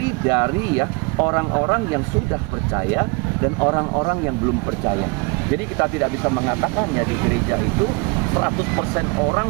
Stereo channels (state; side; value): quieter; left; 29.3 dB